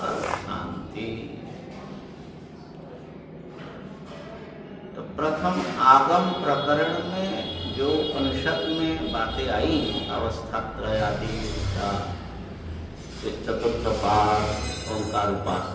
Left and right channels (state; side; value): identical; both; correlation 1.00